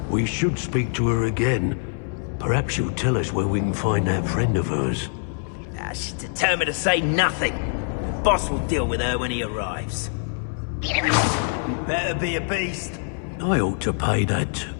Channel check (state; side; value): silent; right; 61 dB below the other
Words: We should speak to her again. Perhaps she'll tell us where we can find that friend of hers. She's determined to say nothing. The boss will deal with her when he arrives. Better be a beast. I ought to pay that